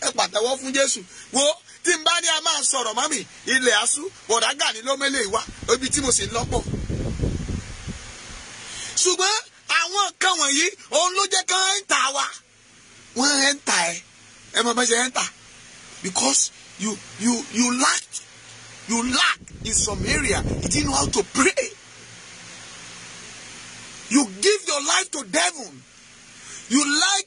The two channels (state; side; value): identical; both; correlation 1.00